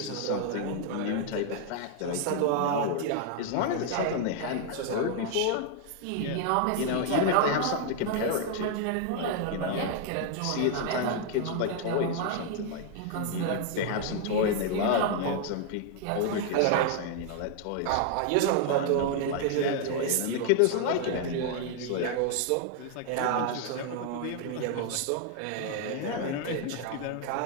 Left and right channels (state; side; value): different; both; correlation 0.00